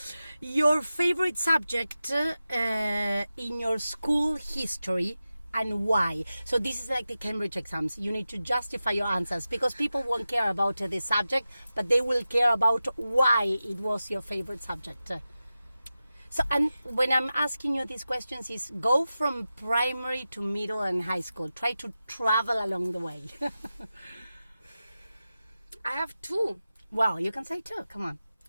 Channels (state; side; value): inverted; both; correlation -0.94